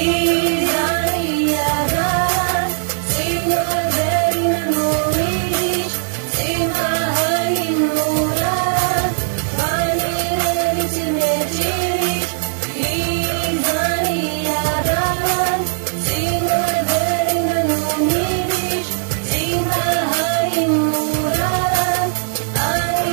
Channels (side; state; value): left; silent; digital silence